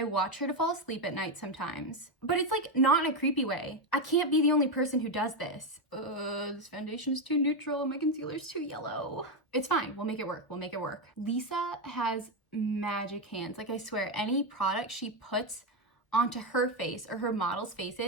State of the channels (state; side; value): late; right; 1.3 ms